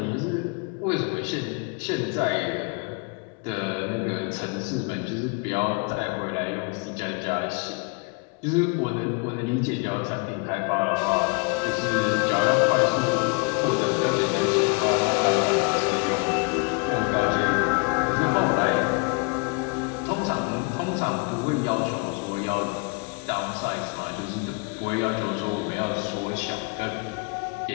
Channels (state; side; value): quieter; right; 32.5 dB